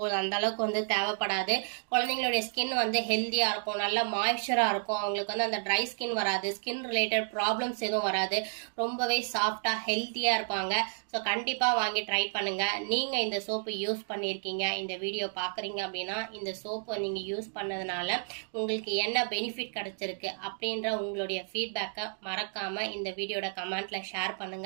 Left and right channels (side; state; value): left; silent; 57 dB below the other